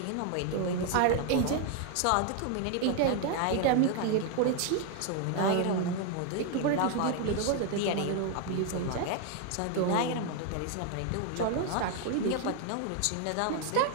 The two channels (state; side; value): different; both; correlation 0.00